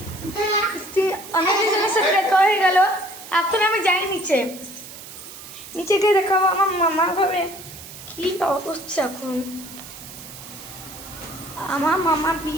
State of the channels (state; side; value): noise; right; hiss, 15 dB below the sound